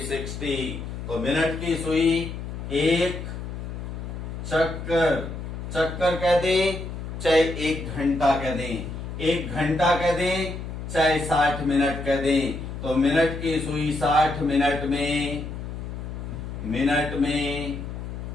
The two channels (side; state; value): left; noise; hum, 7 dB below the sound